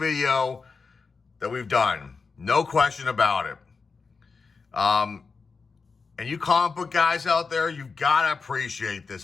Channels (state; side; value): quieter; right; 4.7 dB